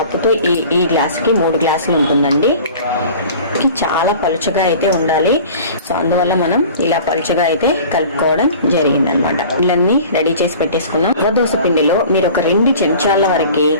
ఈ గ్లాస్కి 3 గ్లాసులు ఉంటుందండి. చాలా పలుచగా అయితే ఉండాలి. సో అందువల్ల మనం ఇలా పలుచగా అయితే కలుపుకోవడం జరిగింది అనమాట. ఇళ్ళన్నీ రెడీ చేసి పెట్టేసుకున్నాం. రవ్వ దోశ పిండిలో మీరు ఒక 2 చెంచాల వరకు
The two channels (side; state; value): both; inverted; correlation -0.43